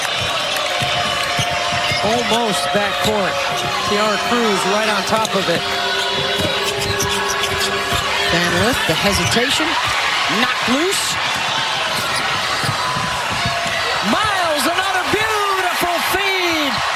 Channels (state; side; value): identical; both; correlation 1.00